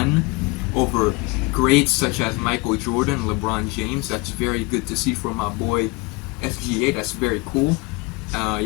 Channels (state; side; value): quieter; right; 25.8 dB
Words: over greats such as Michael Jordan, LeBron James. That's very good to see from my boy SGA. That's very cool.